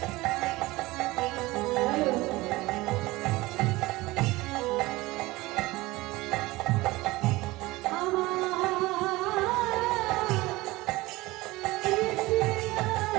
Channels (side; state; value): left; quieter; 20.2 dB